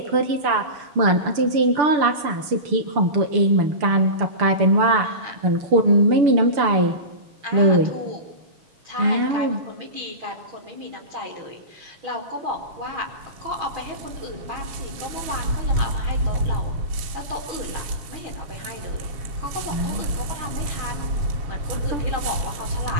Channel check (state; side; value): late; left; 6.8 ms